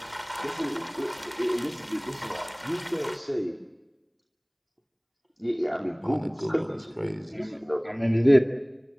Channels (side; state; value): both; identical; correlation 1.00